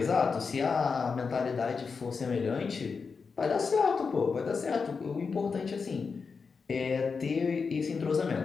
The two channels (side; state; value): right; quieter; 5.2 dB